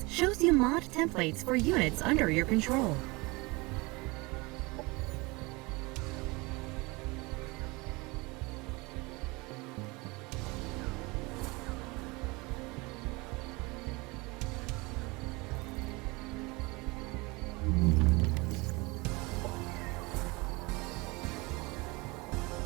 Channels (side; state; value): left; quieter; 25.2 dB